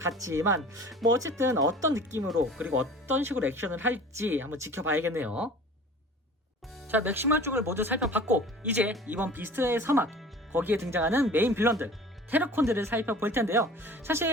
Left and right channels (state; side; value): normal; both; correlation 0.44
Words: 뭐 어쨌든 어떤 느낌으로 그리고 어떤 식으로 액션을 할지 한번 지켜봐야겠네요. 자, 맥시멀 쪽을 모두 살펴봤고, 이제 이번 비스트의 서막, 거기에 등장하는 메인 빌런들 테러콘들을 살펴볼 텐데요.